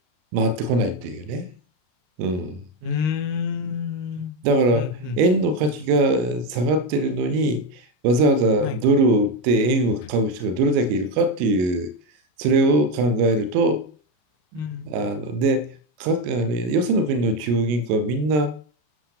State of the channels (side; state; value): left; late; 33 ms